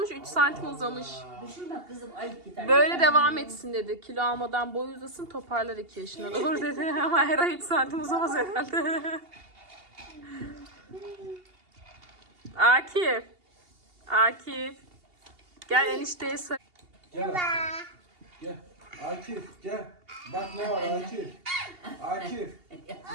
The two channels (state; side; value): late; left; 2.8 ms